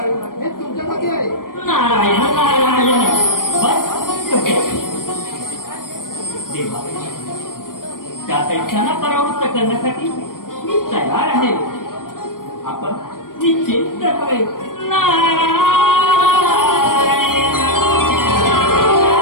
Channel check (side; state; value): right; late; 0.91 ms